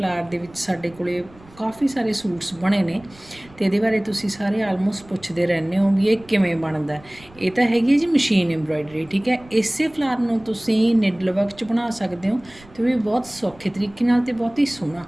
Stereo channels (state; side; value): noise; right; rumble, 24 dB below the sound